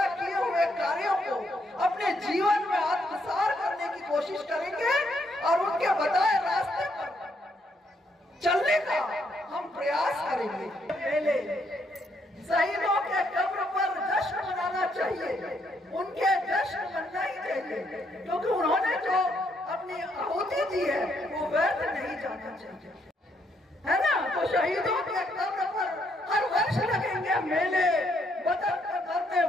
किए हुए कार्यों को अपने जीवन में आत्मसात करने की कोशिश करेंगे और उनके बताए रास्ते पर चलने का हम प्रयास करेंगे। पहले शहीदों के कब्र पर जश्न मनाना चाहिए, उनके जश्न मनना ही चाहिए, क्योंकि उन्होंने जो अपनी आहुति दी है वो व्यर्थ नहीं जाना चाहिए, है ना। तो शहीदों के कब्र पर हर वर्ष लगेंगे मेले, वतन का करने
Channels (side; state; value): both; normal; correlation 0.74